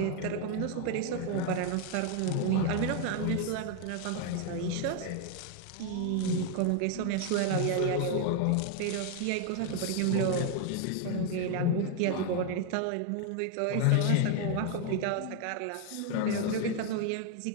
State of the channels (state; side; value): different; both; correlation 0.01